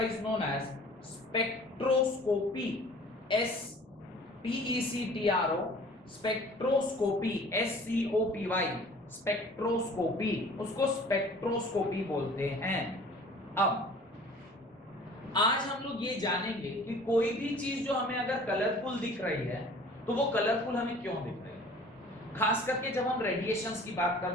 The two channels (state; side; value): normal; both; correlation 0.48